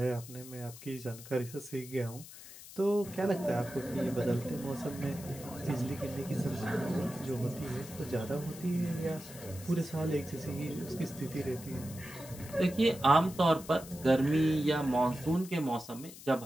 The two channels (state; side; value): noise; left; hiss, 16 dB below the sound